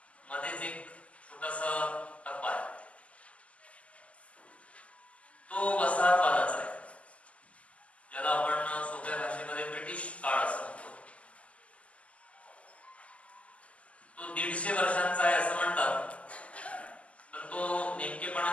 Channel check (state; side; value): late; right; 0.064 ms